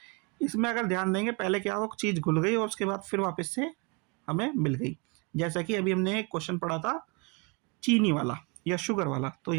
इसमें अगर ध्यान देंगे, पहले क्या हुआ, चीज़ घुल गई और उसके बाद फिर वापस से हमें मिल गई। जैसा कि अभी हमने एक क्वेश्चन पढ़ा था चीनी वाला या शुगर वाला, तो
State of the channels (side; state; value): left; quieter; 31.4 dB